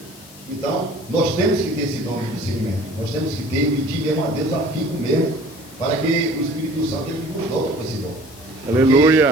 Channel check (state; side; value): noise; left; hiss, 20 dB below the sound